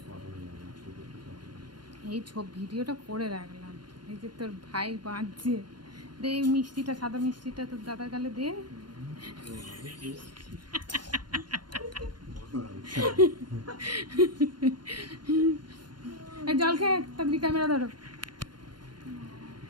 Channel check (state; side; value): late; left; 0.71 ms